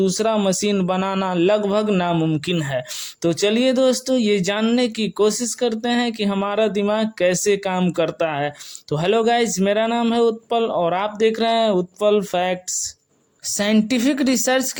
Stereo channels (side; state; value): both; identical; correlation 1.00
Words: मशीन बनाना लगभग नामुमकिन है। तो चलिए दोस्तों, ये जानने की कोशिश करते हैं कि हमारा दिमाग कैसे काम करता है। तो हेलो गाइज, मेरा नाम है उत्पल और आप देख रहे हैं उत्पल फैक्ट्स। साइंटिफिक रिसर्च